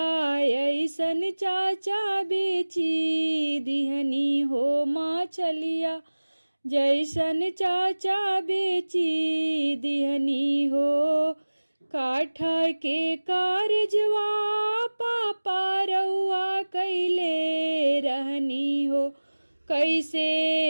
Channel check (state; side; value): inverted; both; correlation -1.00